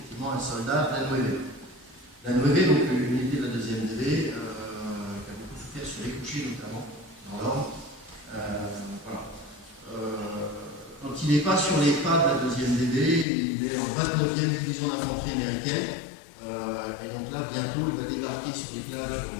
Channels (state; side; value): drops out; right; at 13.2 s